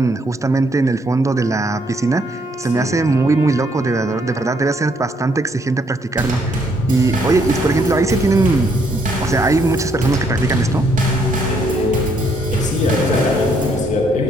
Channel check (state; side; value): normal; both; correlation 0.70